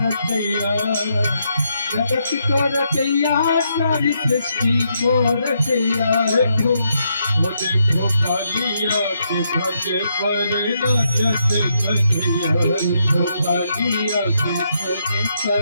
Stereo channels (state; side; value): inverted; both; correlation -0.78